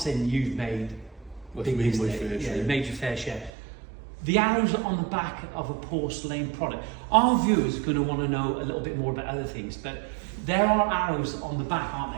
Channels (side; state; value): left; drops out; at 3.5 s